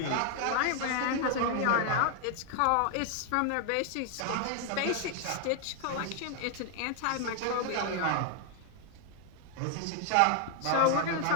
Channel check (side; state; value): both; different; correlation 0.00